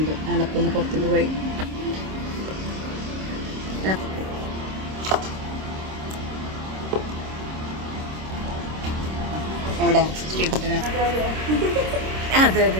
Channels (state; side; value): late; left; 26 ms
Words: ആളപ്പൊന്ന് പുറത്തേക്ക് പോയി. അവിടെ ശ്രീകുട്ടന് അതെ